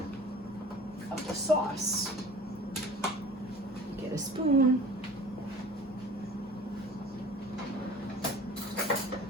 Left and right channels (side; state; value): both; normal; correlation 0.43